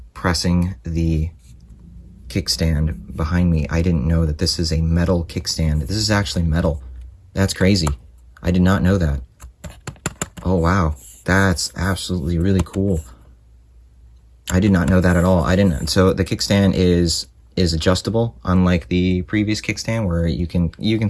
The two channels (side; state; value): both; identical; correlation 1.00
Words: pressing the kickstand behind me. I didn't know that this is a metal kickstand. This is actually metal. That's crazy. I did not know that. Oh, wow. That's absolutely really cool. I did not know that at all. I didn't. So the kickstand is adjustable, unlike the previous kickstand where you can